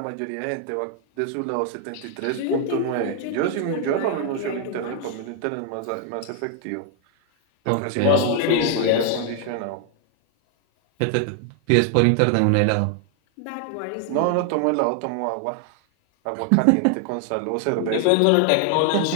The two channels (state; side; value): different; both; correlation 0.00